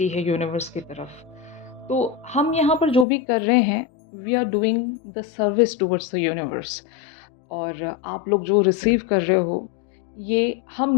है यूनिवर्स की तरफ। तो हम यहाँ पर जो भी कर रहे हैं, we are doing the service towards the universe. और आप लोग जो रिसीव कर रहे हो, ये हम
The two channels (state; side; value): drops out; right; at 3.1 s